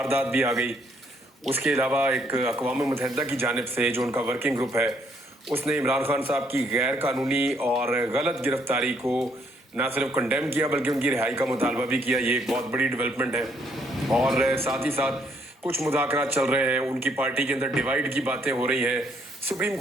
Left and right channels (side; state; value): both; normal; correlation 0.69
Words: भी आ गई। उसके अलावा एक अक़वाम मुत्तहिदा की जानिब से जो उनका वर्किंग ग्रुप है उसने इमरान खान साहब की गैर कानूनी और गलत गिरफ्तारी को ना सिर्फ कंडेम किया बल्कि उनकी रिहाई का मुतालबा भी किया। ये एक बहुत बड़ी डेवलपमेंट है। और साथ ही साथ कुछ मुज़ाकरात चल रहे हैं, उनकी पार्टी के अंदर डिवाइड की बातें हो रही हैं। सुप्रीम